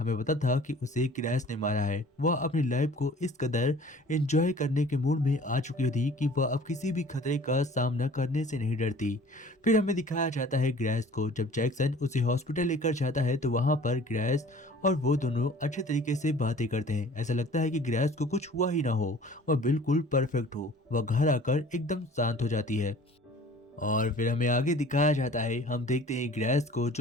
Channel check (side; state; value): both; normal; correlation 0.48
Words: पता था कि उसे ग्रेस ने मारा है। वह अपनी लाइफ को इस कदर एंजॉय करने के मूड में आ चुकी थी कि वह अब किसी भी खतरे का सामना करने से नहीं डरती। फिर हमें दिखाया जाता है ग्रेस को। जब जैक्सन उसे हॉस्पिटल लेकर जाता है तो वहां पर ग्रेस और वो दोनों अच्छे तरीके से बातें करते हैं। ऐसा लगता है कि ग्रेस को कुछ हुआ ही ना हो, वह बिल्कुल परफेक्ट हो। वह घर आकर एकदम शांत हो जाती है और फिर हमें आगे दिखाया जाता है। हम देखते हैं ग्रेस को